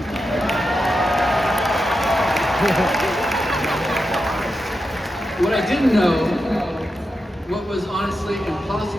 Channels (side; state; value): both; normal; correlation 0.88